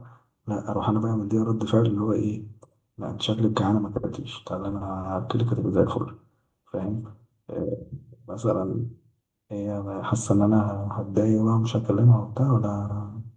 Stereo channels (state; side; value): identical; both; correlation 1.00